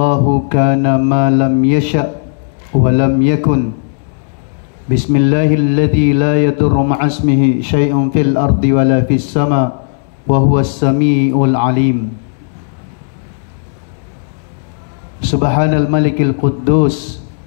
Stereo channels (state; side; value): silent; right; digital silence